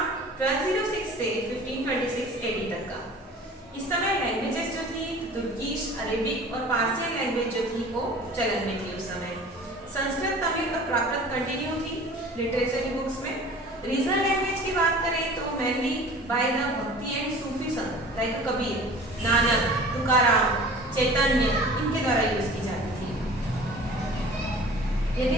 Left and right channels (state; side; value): normal; both; correlation 0.43